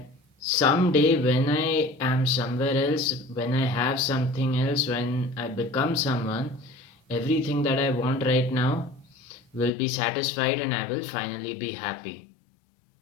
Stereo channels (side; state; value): right; drops out; at 9.7 s